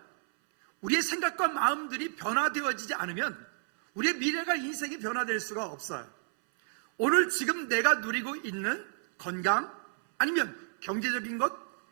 우리의 생각과 마음들이 변화되어지지 않으면 우리의 미래가 인생이 변화될 수가 없어요. 오늘 지금 내가 누리고 있는 건강, 아니면 경제적인 것,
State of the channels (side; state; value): left; silent; 57 dB below the other